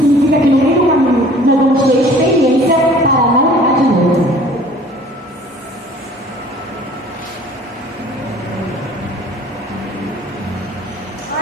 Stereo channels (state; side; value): normal; both; correlation 0.50